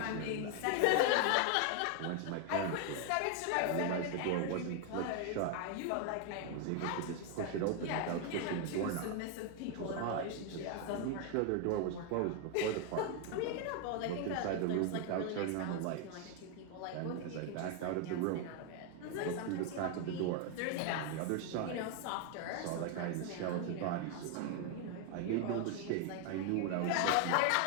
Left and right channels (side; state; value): both; different; correlation 0.01